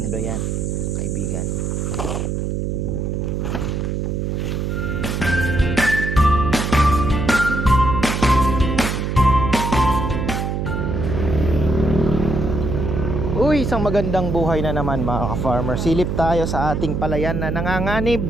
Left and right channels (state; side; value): noise; right; hum, 1 dB below the sound